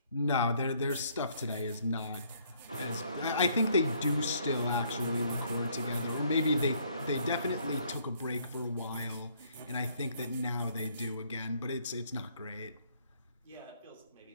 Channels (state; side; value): inverted; both; correlation -0.65